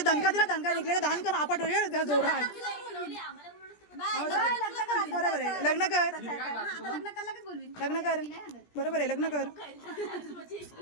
दणका दिला दणका निघलेला दान कर आपट त्या जोरा बरोबर आहे लग्न कर बरोबर आहे लग्न कर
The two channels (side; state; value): right; late; 17 ms